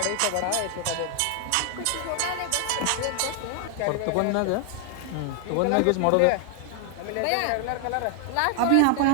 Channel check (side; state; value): both; different; correlation 0.00